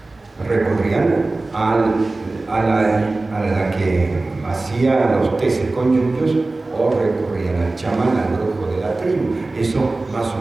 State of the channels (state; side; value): quieter; left; 3.2 dB